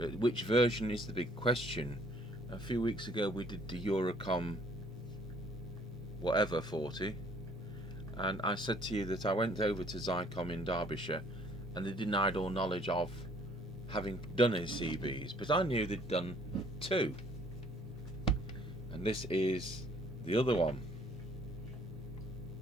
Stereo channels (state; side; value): normal; both; correlation 0.60